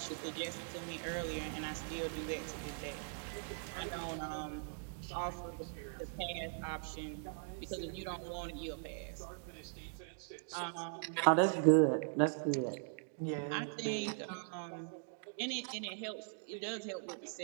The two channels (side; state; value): left; silent; digital silence